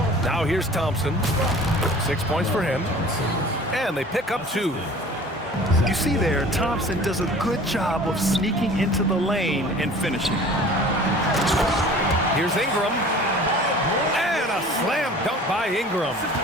Now here's Thompson. 6 points for him. And they pick up 2. You see there, Thompson does a good job of sneaking into the lane and finishing. Here's Ingram. And a slam dunk by Ingram.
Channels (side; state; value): both; normal; correlation 0.45